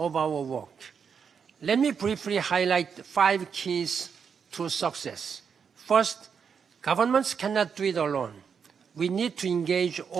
our work. Let me briefly highlight 5 keys to success. First, governments cannot do it alone. We need to engage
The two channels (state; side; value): quieter; left; 6.6 dB